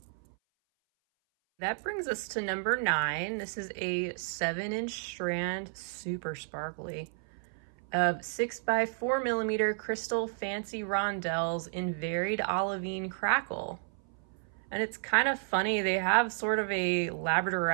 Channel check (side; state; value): left; silent; 56 dB below the other